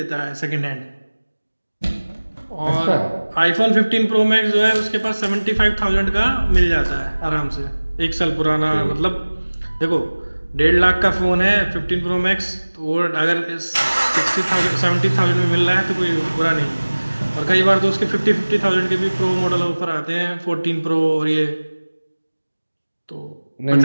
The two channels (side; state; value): both; inverted; correlation -1.00